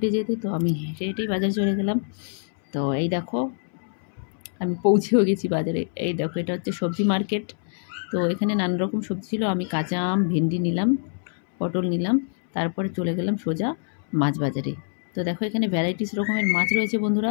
যেতে। তো আমি হেঁটে হেঁটেই বাজারে চলে গেলাম। তো এই দেখো আমি পৌঁছেও গেছি বাজারে। এই দেখো এটা হচ্ছে সবজি মার্কেট। তো এখানে নানা রকম সবজি ছিল। আমি কাঁচা আম, ভেন্ডি নিলাম, পটল নিলাম। তারপরে চলে গেলাম সোজা মাছ বাজারে। তো দেখো এখানে ভ্যারাইটিস রকমের মাছ রয়েছে বন্ধুরা।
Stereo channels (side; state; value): right; silent; 62 dB below the other